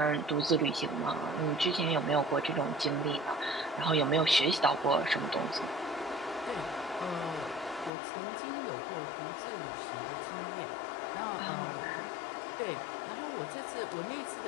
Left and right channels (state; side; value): drops out; right; at 7.9 s